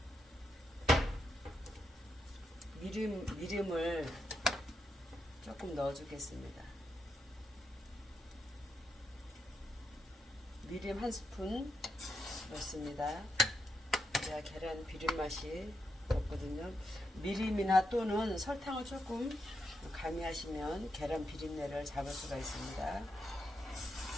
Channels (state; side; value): normal; both; correlation 0.83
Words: 미림을 조금 넣어주겠습니다. 미림 1스푼 넣습니다. 그래야 계란 비린 맛이 없거든요. 미림이나 또는 설탕을 조금 가미하시면 계란 비린내를 잡을 수가 있습니다.